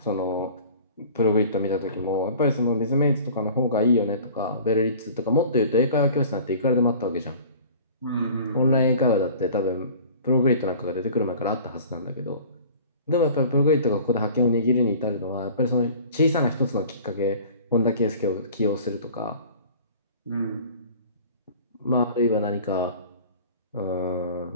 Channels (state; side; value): inverted; both; correlation -0.45